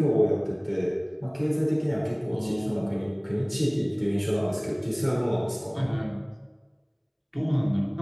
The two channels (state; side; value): identical; both; correlation 1.00